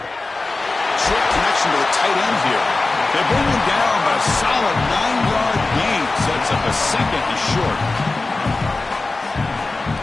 Short connection to the tight end here. They bring him down, but a solid 9-yard gain sets up a second and short.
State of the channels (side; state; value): right; quieter; 3.4 dB